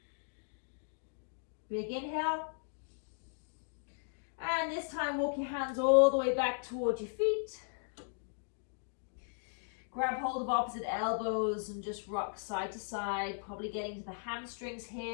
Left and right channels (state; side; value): silent; right; digital silence